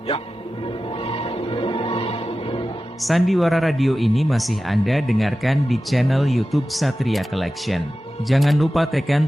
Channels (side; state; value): both; normal; correlation 0.94